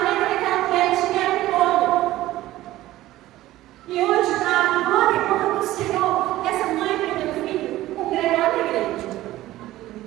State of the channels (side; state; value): left; quieter; 15.8 dB